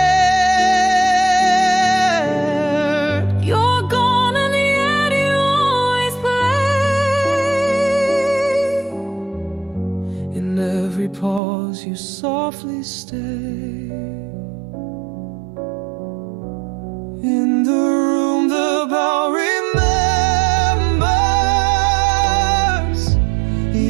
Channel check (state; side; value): drops out; left; at 11.4 s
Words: You're gone and yet you always play. In every pause you softly stay. In the room the bell remembers.